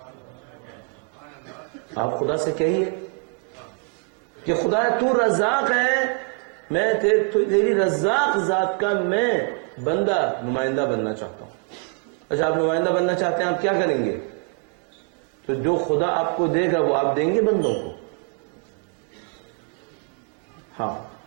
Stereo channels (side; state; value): left; quieter; 36.4 dB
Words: آپ خدا سے کہیے کہ خدا تو رزاق ہے، میں تیری رزاق ذات کا میں بندہ نمائندہ بننا چاہتا ہوں. اچھا، آپ نمائندہ بننا چاہتے ہیں، آپ کیا کریں گے؟ تو جو خدا آپ کو دے گا وہ آپ دیں گے بندوں کو. ہاں،